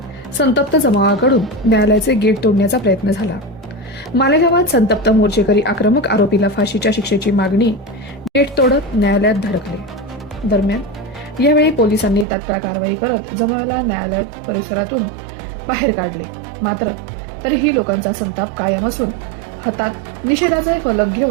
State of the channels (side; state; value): left; drops out; at 12.2 s